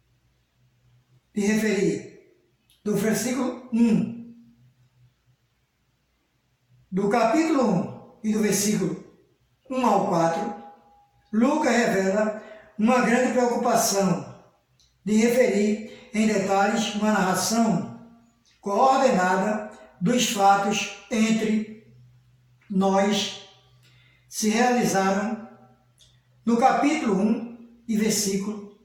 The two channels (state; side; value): identical; both; correlation 1.00